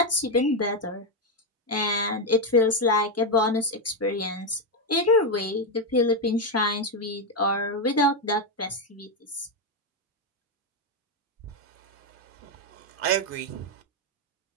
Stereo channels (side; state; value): both; normal; correlation 0.05